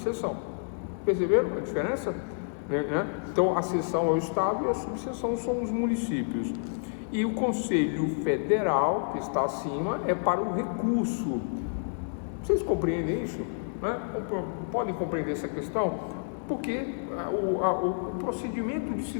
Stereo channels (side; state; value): right; silent; 57 dB below the other